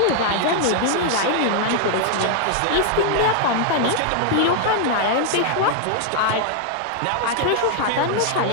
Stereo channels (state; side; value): different; both; correlation 0.00